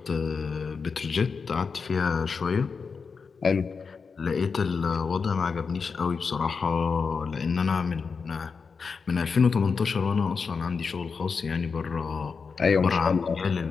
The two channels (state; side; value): quieter; right; 5.2 dB